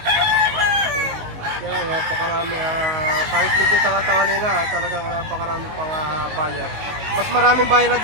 Yan, napakarami. Kahit medyo tangatangali na, talagang napakarami pang buyer. Mas maraming buyer na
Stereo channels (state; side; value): late; left; 19 ms